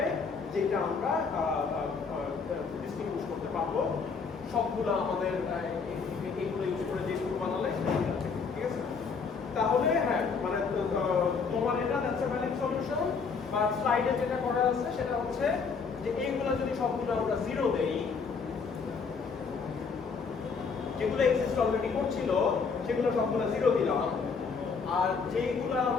যেটা আমরা ডিস্টিংগুইশ করতে পারবো সবগুলো আমাদের এইগুলো ইউজ করে যে টুর বানালে, ঠিক আছে? তাহলে হ্যাঁ, মানে তোমার এটা দ্যাটস আ ভ্যালিড সলিউশন। বা স্লাইডে যেটা করা আছে সেটা হচ্ছে যে এইগুলো যদি সবগুলো আমরা 0 দেই, যেগুলো এক্সিস্ট অলরেডি করছিল সেগুলো সবগুলো 0 দিলাম, আর যেগুলো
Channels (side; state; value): right; quieter; 5.3 dB